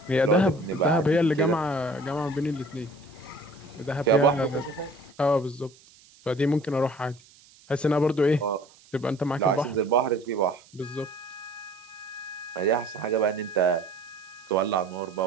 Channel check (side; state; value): right; noise; hiss, 26 dB below the sound